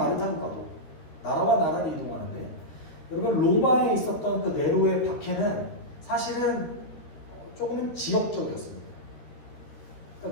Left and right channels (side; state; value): right; late; 13 ms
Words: 타고 가도 나라와 나라를 이동하는데 여러분 로마에 있었던 그 네로의 박해는 사실은 조금은 지역적이었습니다.